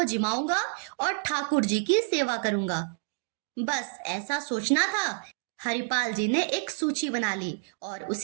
जिमाऊंगा और ठाकुर जी की सेवा करूंगा। बस ऐसा सोचना था। हरिपाल जी ने एक सूची बना ली और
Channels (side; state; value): left; silent; digital silence